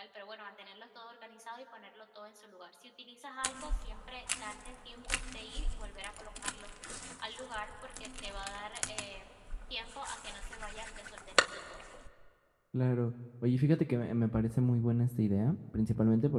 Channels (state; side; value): identical; both; correlation 1.00